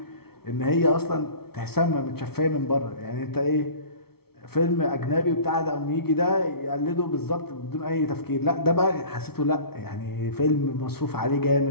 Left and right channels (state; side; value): late; right; 0.95 ms